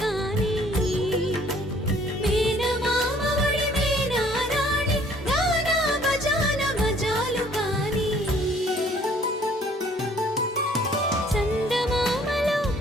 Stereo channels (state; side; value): normal; both; correlation 0.58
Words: కాని మేనమామ ఒడి మేనారాణి గానా బజాన మజాలు కాని చందమామలో